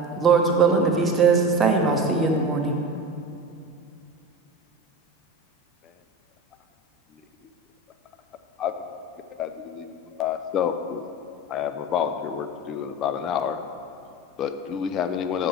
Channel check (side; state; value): both; normal; correlation 0.28